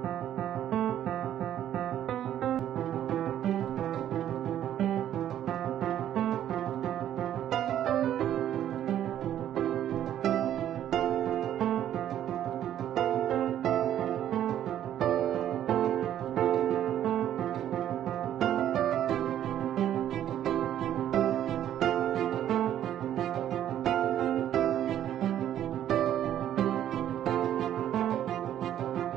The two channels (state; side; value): quieter; left; 11.1 dB